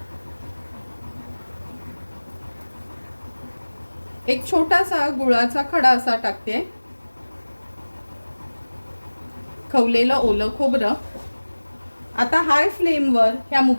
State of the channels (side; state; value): both; inverted; correlation -1.00